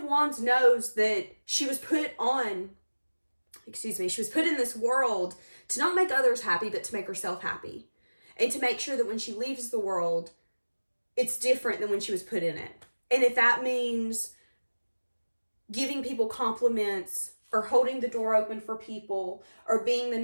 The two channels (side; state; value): both; inverted; correlation -1.00